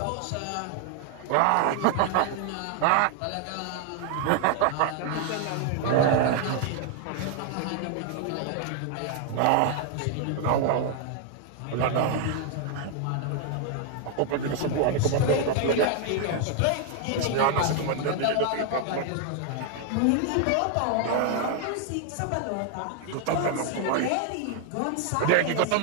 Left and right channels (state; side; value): different; both; correlation 0.00